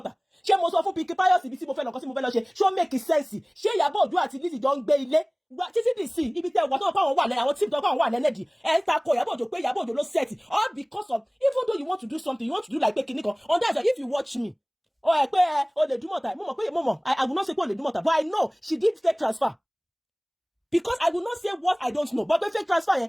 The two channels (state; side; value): identical; both; correlation 1.00